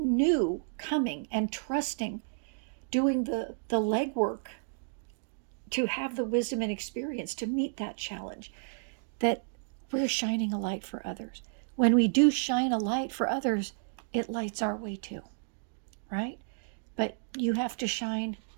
coming and trusting, doing the legwork to have the wisdom and experience to meet that challenge, that we're shining a light for others. When we do shine a light for others, it lights our way too, right? But you have to shine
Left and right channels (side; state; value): left; silent; digital silence